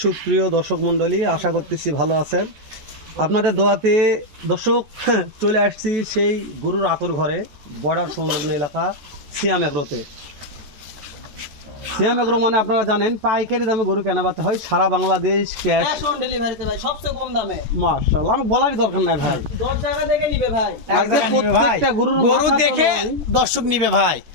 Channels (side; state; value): left; late; 14 ms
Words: সুপ্রিয় দর্শক মণ্ডলী? আশা করতেছি ভালো আছেন। আপনাদের দোয়াতে দর্শক চলে আসছি সেই গরুর আতর ঘরে, বর্ডার সংলগ্ন এলাকা সিয়াম এগ্রোতে। সিয়াম এগ্রো মানে আপনারা জানেন পাইকারি দামে গরু কেনাবেচা হয় সারা বাংলাদেশ, ক্যাশ অন ডেলিভারিতে ভাই, সবচেয়ে কম দামে। মাশাআল্লাহ, আমার বলারই দরকার নাই ভাই। 10 টাকা দেখে নিবে ভাই। আজকে প্রত্যেকটা গরুর গরু মাথা তো দেখে নয়। দর্শক নিবে ভাই,